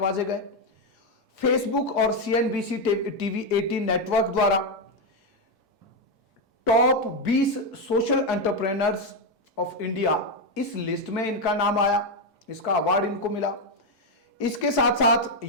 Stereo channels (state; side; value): normal; both; correlation 0.05